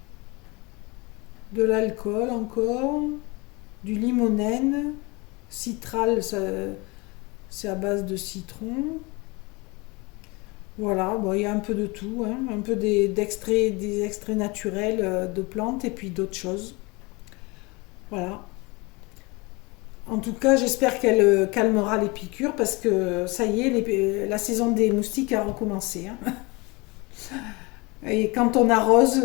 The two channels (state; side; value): quieter; right; 26.1 dB